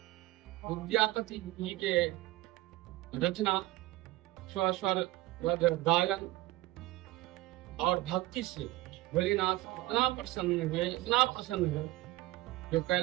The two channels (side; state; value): left; quieter; 17.9 dB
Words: विद्यापति जी के रचना स्वर गायन और भक्ति से भोलेनाथ इतना प्रसन्न हुए जो